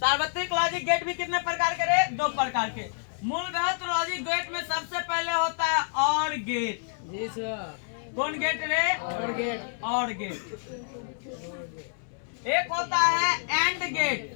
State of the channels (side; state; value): right; silent; 59 dB below the other